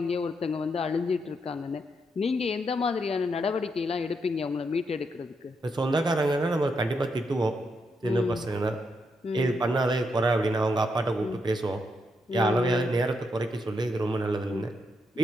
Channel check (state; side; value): normal; both; correlation 0.80